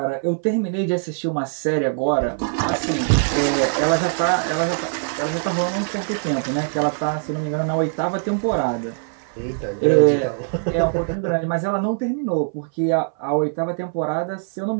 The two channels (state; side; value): silent; left; 58 dB below the other